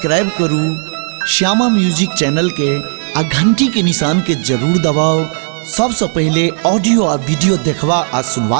करू Shyama music channel के आ घंटी के निशान के जरूर दबाओ सबसे पहले ऑडियो आ वीडियो देखवा आ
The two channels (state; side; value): silent; left; digital silence